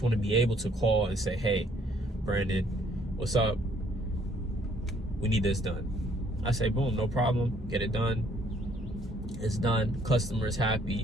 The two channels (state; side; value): normal; both; correlation 0.64